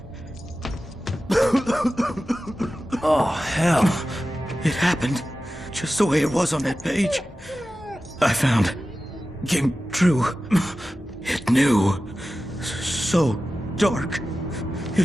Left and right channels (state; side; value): normal; both; correlation 0.94